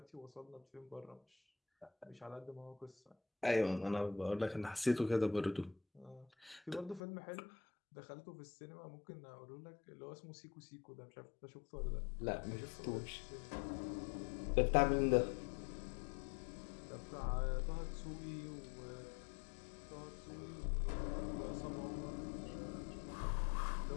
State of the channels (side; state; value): right; drops out; at 7.0 s